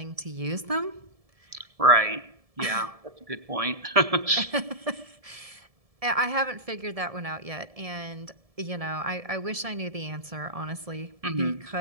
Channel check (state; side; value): late; left; 1.7 ms